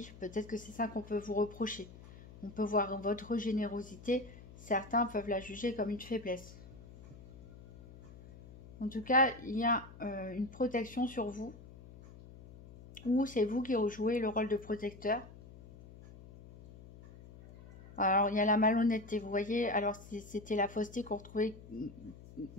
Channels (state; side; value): noise; left; hum, 18 dB below the sound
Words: Peut-être que c'est ça qu'on peut vous reprocher. On peut voir votre générosité. Certains peuvent la juger comme une faiblesse. En tout cas, il y a une protection sur vous. Ou c'est vous qui jouez le rôle de protecteur. Alors, il y a la malhonnêteté, vous voyez. Alors, c'était la fausseté qu'on retrouvait.